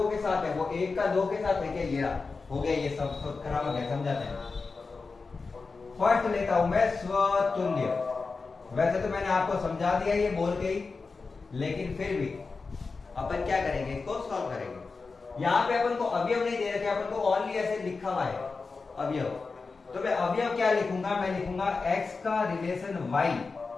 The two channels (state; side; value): quieter; right; 4.3 dB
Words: के साथ है, वो 1 का 2 के साथ है क्या? ये हो गया, ये सब संक्रामक है। समझाते हैं। फर्स्ट लेता हूं मैं स्वतुल्य। वैसे तो मैंने आपको समझा दिया ये बोल के ही, लेकिन फिर भी अपन क्या करेंगे, इसको सॉल्व करेंगे। यहाँ पे अपन को अवयव नहीं दे रखे, अपन को ओनली ऐसे लिखा हुआ है अवयव। तो मैं अवयव क्या लिखूंगा, मैं लिखूंगा x का रिलेशन y,